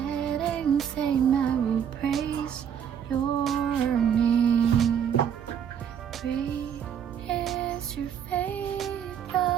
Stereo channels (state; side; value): quieter; left; 8.4 dB